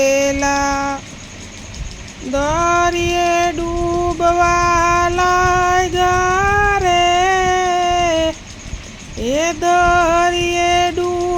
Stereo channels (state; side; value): identical; both; correlation 1.00